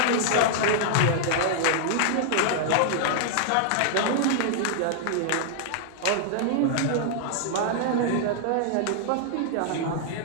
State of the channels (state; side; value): different; both; correlation -0.01